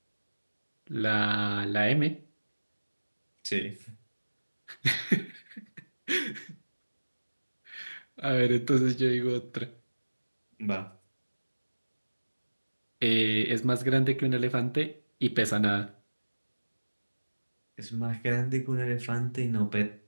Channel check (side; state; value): both; inverted; correlation -1.00